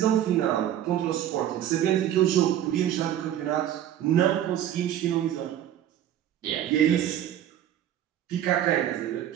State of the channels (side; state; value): left; quieter; 11.2 dB